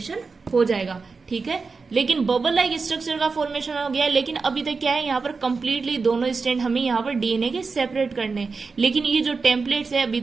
हो जाएगा। ठीक है, लेकिन बबल लाइक स्ट्रक्चर का फॉर्मेशन हो गया, लेकिन अभी तक क्या है, यहाँ पर कंप्लीटली दोनों स्ट्रैंड हमें यहाँ पर डीएनए के सेपरेट करने हैं। लेकिन ये जो टेम्पलेट्स है अभी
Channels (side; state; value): left; quieter; 4.5 dB